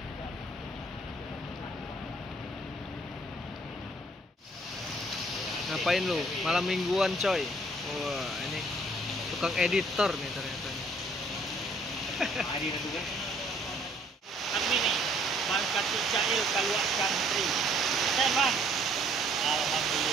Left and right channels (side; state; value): both; normal; correlation 0.61